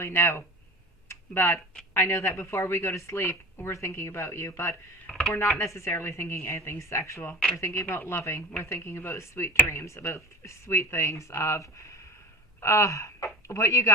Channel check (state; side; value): normal; both; correlation 0.34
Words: know. But I know that before we go to sleep, we're thinking about you. But we're not necessarily thinking anything sexual. We're thinking about loving. We're thinking about sweet dreams, about sweet things of what you